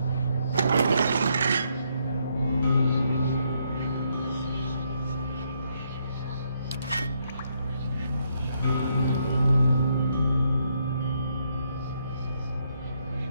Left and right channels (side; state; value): both; inverted; correlation -0.75